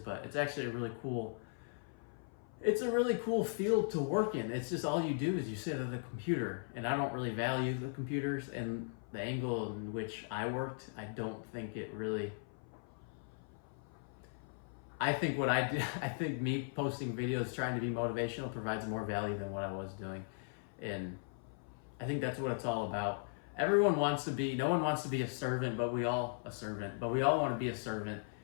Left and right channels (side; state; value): right; silent; 52 dB below the other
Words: it's actually a really cool field to work in. It's just all you do is you sit at a computer, and I don't really value the computers, and the angle in which I worked, I don't think it really... I think me posting videos trying to be motivational provides more value than what I was doing. And I think that's what it's all about. No one wants to be a servant, but we all want to be a servant.